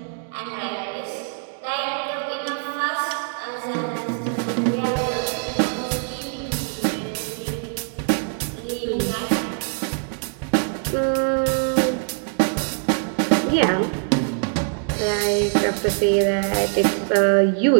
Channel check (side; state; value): left; silent; 63 dB below the other